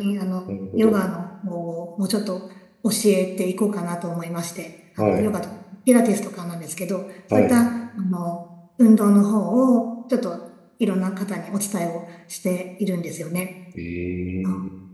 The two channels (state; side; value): identical; both; correlation 1.00